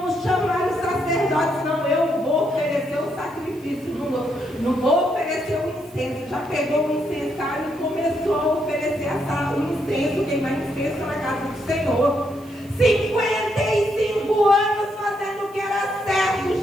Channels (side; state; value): right; noise; hiss, 26 dB below the sound